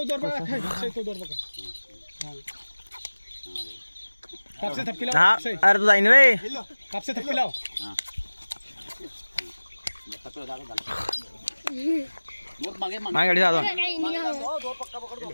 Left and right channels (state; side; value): inverted; both; correlation -1.00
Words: दोर पकड अक्षय तो दोर पकड कापसे थप्पी लाव अक्षय अरे तू जाईन रे कापसे थप्पी लाव माय गाडी जातो